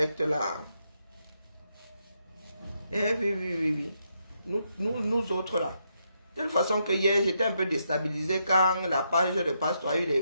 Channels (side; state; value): both; inverted; correlation -0.80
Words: là. Eh oui. Nous autres là. De toute façon que hier, j'étais un peu déstabilisé quand la page de Pasteur a eu les